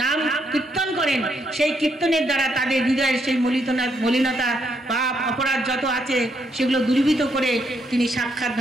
নাম কীর্তন করেন। সেই কীর্তনের দ্বারা তাদের হৃদয়ের সেই মলিনতা, পাপ, অপরাধ যত আছে সেগুলো দূরীভূত করে তিনি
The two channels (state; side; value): normal; both; correlation 0.75